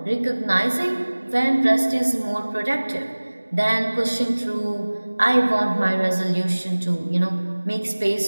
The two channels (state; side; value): inverted; both; correlation -1.00